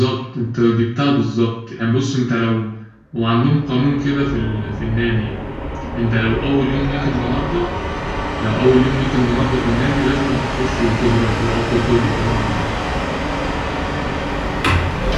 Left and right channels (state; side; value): identical; both; correlation 1.00